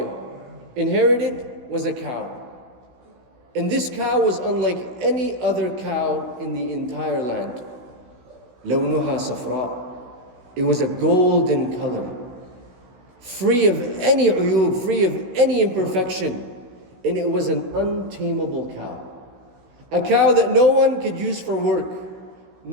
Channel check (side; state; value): left; late; 16 ms